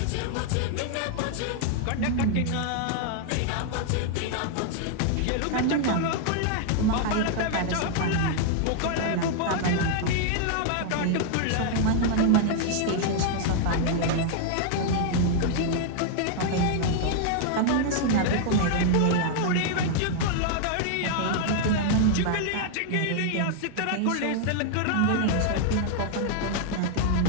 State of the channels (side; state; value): both; different; correlation 0.00